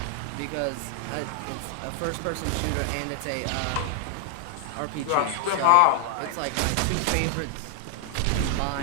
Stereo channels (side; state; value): both; different; correlation 0.00